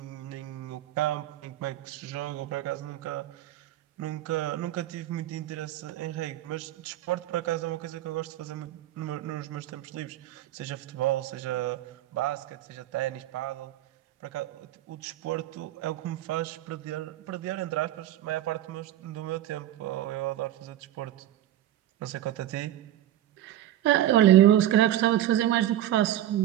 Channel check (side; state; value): left; quieter; 12.9 dB